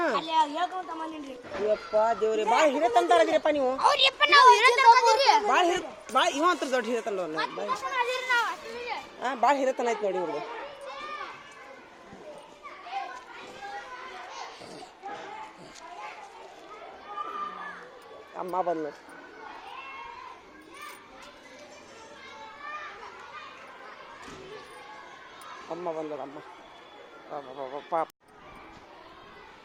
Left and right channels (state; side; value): identical; both; correlation 1.00